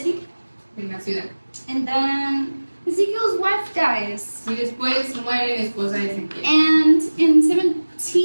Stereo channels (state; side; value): inverted; both; correlation -1.00